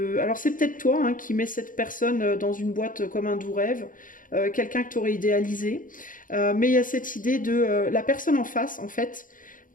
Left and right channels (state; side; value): late; right; 0.39 ms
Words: Alors c'est peut-être toi hein, qui mets cette personne dans une boîte comme un doux rêve, quelqu'un que tu aurais idéalisé, mais il y a cette idée de la personne en face, en fait,